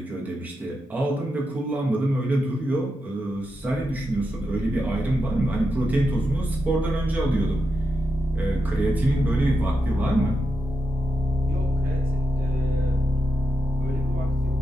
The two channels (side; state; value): both; normal; correlation 0.86